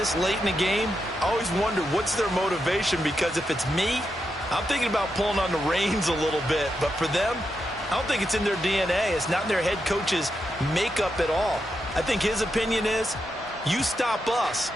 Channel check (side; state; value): both; normal; correlation 0.85